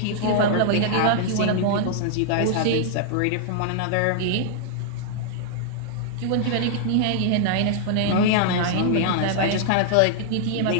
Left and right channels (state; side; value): different; both; correlation -0.01